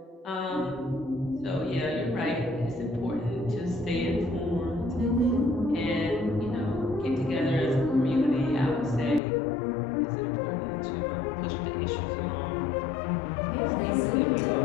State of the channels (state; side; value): drops out; right; at 9.2 s